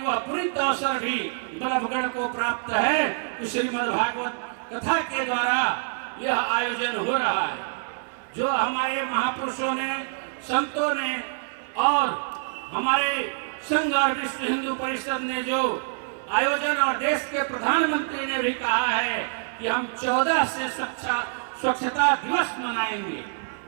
वह पुनीत अवसर भी बल्लभगढ़ को प्राप्त है कि श्रीमद् भागवत कथा के द्वारा यह आयोजन हो रहा है। जो हमारे महापुरुषों ने, संतों ने और हमारे संघ और विश्व हिंदू परिषद ने जो आयोजन और देश के प्रधानमंत्री ने भी कहा है कि हम 14 से स्वच्छता दिवस मनाएंगे।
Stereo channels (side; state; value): left; silent; 61 dB below the other